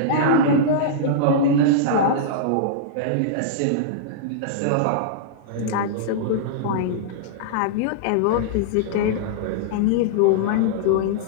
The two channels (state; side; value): different; both; correlation -0.02